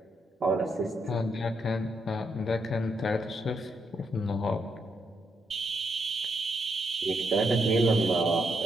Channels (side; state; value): both; normal; correlation 0.79